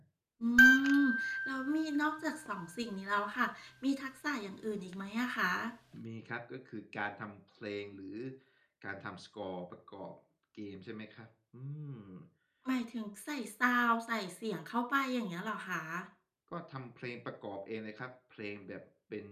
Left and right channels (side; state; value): both; identical; correlation 1.00